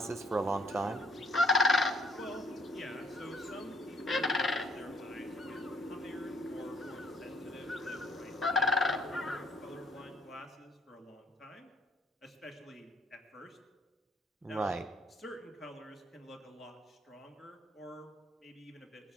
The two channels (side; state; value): both; normal; correlation 0.65